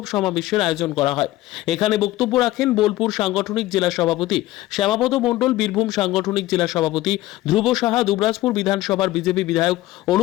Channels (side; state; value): right; quieter; 16.6 dB